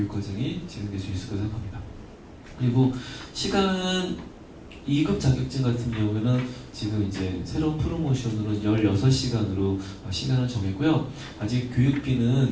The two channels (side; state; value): both; identical; correlation 1.00